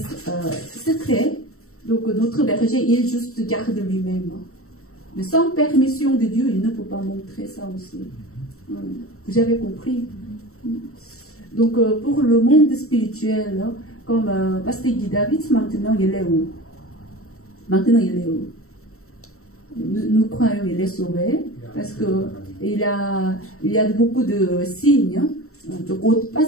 secret. Donc notre berger, il juste garde lui-même. Mais sans permission de Dieu, il ne peut pas montrer ça aussi. Vous avez compris? Donc pour le monde spirituel, comme Pasteur Guy David, maintenant il est où? Maintenant il est où? Nous croyons qu'il est sauvé parce que il y a beaucoup de signes. Donc,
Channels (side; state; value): right; late; 0.63 ms